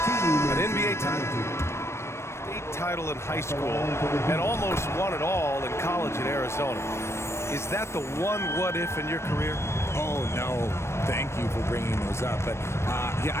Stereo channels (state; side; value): late; right; 0.13 ms